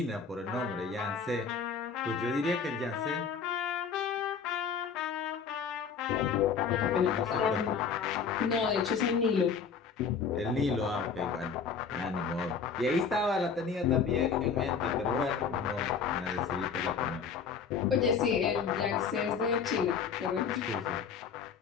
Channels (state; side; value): quieter; right; 6.1 dB